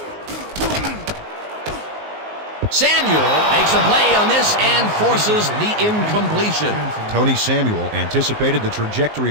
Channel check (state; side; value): late; left; 19 ms